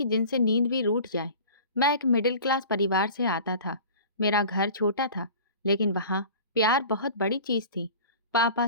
जिनसे नींद भी रूठ जाए। मैं एक मिडिल क्लास परिवार से आता था। मेरा घर छोटा था, लेकिन वहाँ प्यार बहुत बड़ी चीज़ थी। पापा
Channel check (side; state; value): both; inverted; correlation -0.41